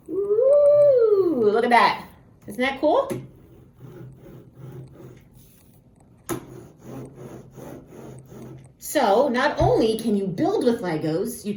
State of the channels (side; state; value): both; identical; correlation 1.00